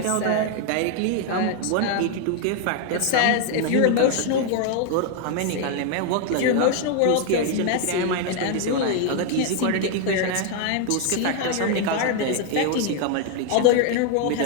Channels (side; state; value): both; different; correlation 0.00